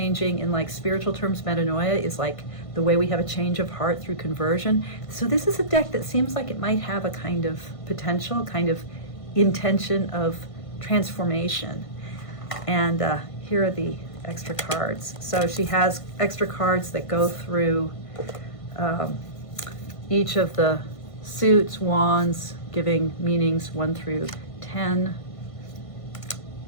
in like spiritual terms, metanoia is like the way we have a change of heart through conversion. So this is a deck that seems like it might have a kind of potential, kind of intention of transformation. And here are the extra cards. So she has extra cards that go through each of the suits, wands, giving meanings 1 through 10.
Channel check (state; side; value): late; right; 1.5 ms